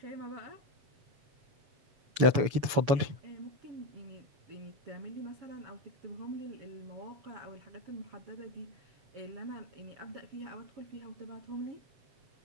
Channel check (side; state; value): left; late; 7.1 ms